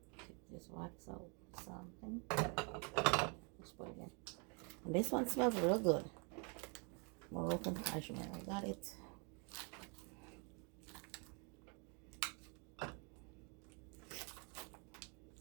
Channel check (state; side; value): quieter; left; 35.4 dB